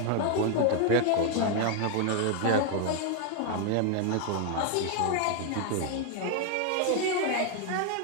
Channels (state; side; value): different; both; correlation 0.00